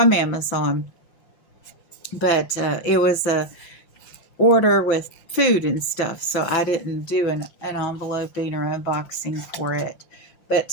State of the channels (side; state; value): right; late; 5.7 ms